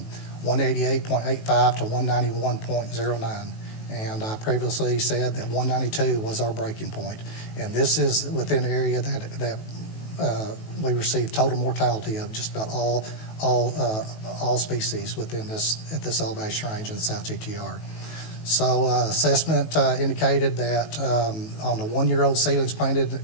to 191.09. And I previously said that 192 was our breaking point. And this is within the area that we received total mortality of just about all species within at this elevation range in the South GTR. So assessment indicated that on the 1-year-old seedlings planted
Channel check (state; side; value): late; right; 19 ms